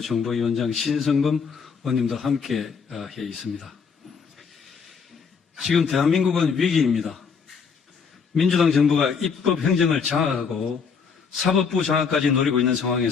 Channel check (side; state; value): right; quieter; 5.9 dB